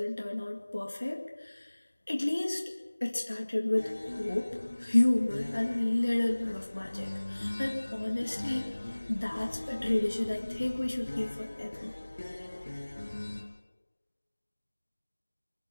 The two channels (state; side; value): inverted; both; correlation -1.00